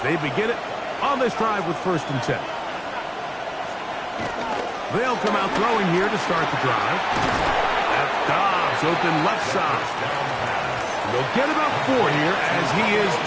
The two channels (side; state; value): both; identical; correlation 1.00